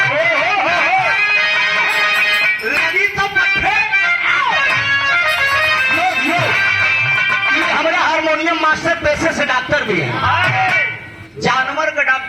लगी तो हमारा हारमोनियम मास्टर पैसे से डॉक्टर भी है, जानवर का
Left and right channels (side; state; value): both; identical; correlation 1.00